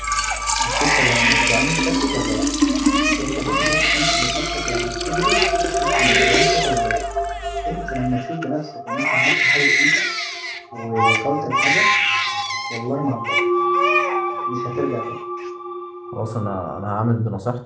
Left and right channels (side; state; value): both; identical; correlation 1.00